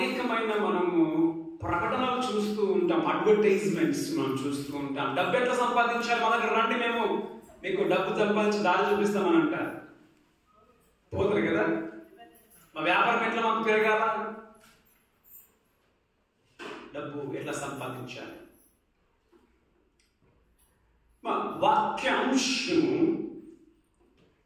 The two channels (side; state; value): both; identical; correlation 1.00